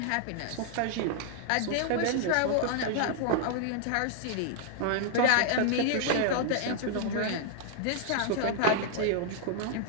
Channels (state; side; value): different; both; correlation 0.00